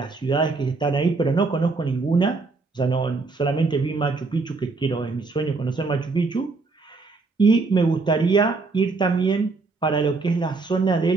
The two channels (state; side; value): quieter; left; 4.0 dB